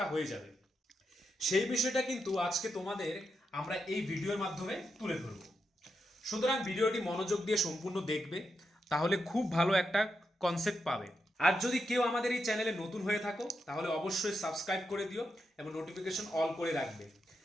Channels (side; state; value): both; normal; correlation 0.85